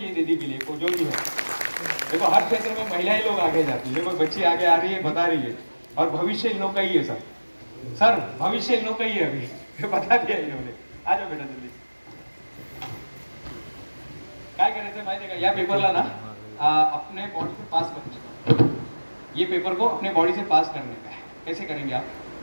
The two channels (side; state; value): both; inverted; correlation -1.00